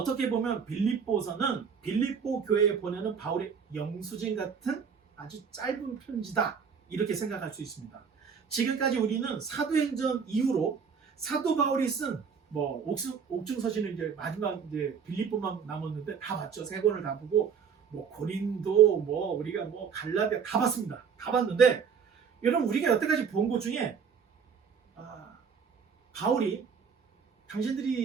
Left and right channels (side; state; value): left; quieter; 6.5 dB